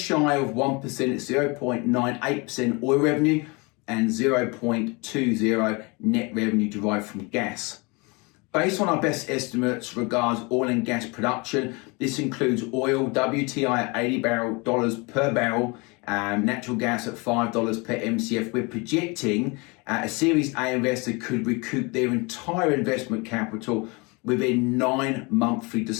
shy of 1%, it's 0.98% oil revenue and 0.20 net revenue derived from gas. Based on our best estimates regards oil and gas production, this includes oil WTI at $80 per barrel natural gas at $5 per MCF. We're projecting a Series A investor could recoup their entire investment capital within 9 monthly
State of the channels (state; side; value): quieter; right; 28.2 dB